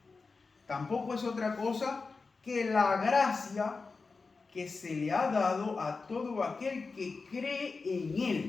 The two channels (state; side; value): quieter; right; 4.2 dB